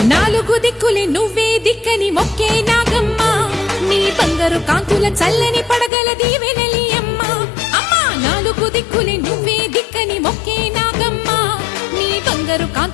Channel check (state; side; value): drops out; right; at 5.9 s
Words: నాలుగు దిక్కులే నువ్వే దిక్కని మొక్కే నాగమ్మ, నీ బంగారు కాంతుల చల్లని పడగల దీవెనలి అమ్మ. అమ్మా నాలుగు దిక్కులే నువ్వే దిక్కని మొక్కే నాగమ్మ, నీ బంగారు